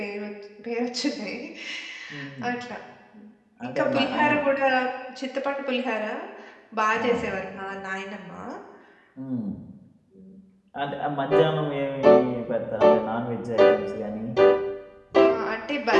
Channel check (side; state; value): both; identical; correlation 1.00